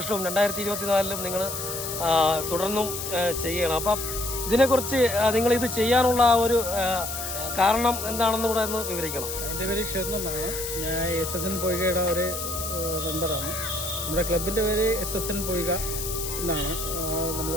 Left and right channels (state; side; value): noise; left; hiss, 5 dB below the sound